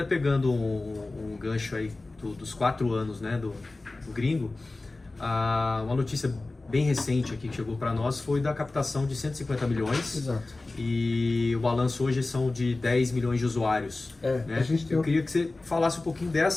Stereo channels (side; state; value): right; quieter; 3.2 dB